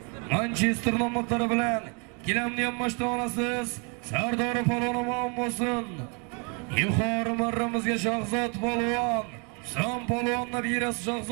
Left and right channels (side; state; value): left; quieter; 35.0 dB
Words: Manchester nomlari bilan gilamni ham mashta olasiz. Sardori polvoni omon bo'lsin. Yuqori marramizga Shahzod polvon, Son polvonni berasiz.